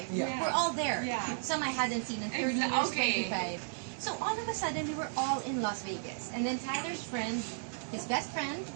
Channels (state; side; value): silent; left; digital silence